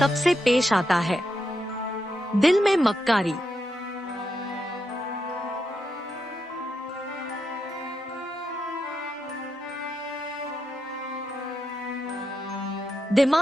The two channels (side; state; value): both; normal; correlation 0.84